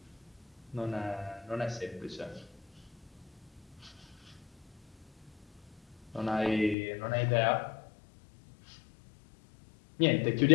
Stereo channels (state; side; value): drops out; right; at 6.8 s